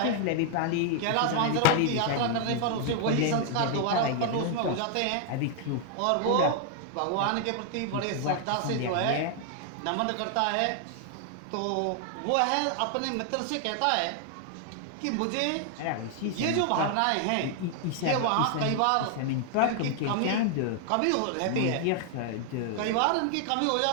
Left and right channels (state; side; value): different; both; correlation 0.00